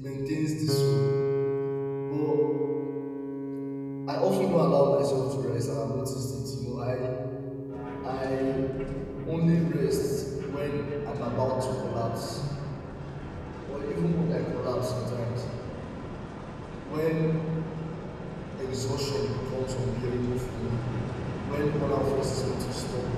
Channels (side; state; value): both; identical; correlation 1.00